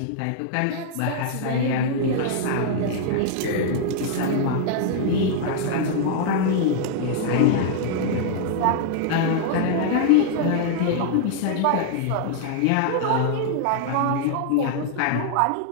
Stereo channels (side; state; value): both; different; correlation -0.01